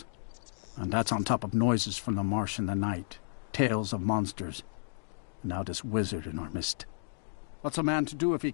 And that's on top of noises from the marsh in the night. Tales of monsters. And now this wizard in our midst. What's a man to do if he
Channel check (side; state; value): right; silent; digital silence